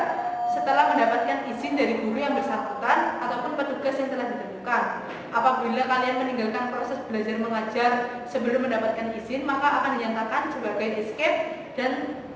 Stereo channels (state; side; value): identical; both; correlation 1.00